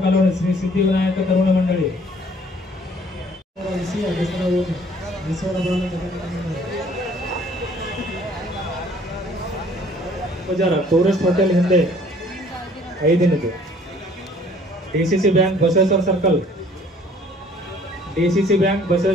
कलोनी श्री सिद्धिविनायक तरुण मंडली ಟೂರಿಸ್ಟ್ ಹೋಟೆಲ್ ಹಿಂದೆ 5 ದಿನದ್ದು ಡಿಸಿಸಿ ಬ್ಯಾಂಕ್ ಬಸವೇಶ್ವರ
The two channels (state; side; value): normal; both; correlation 0.57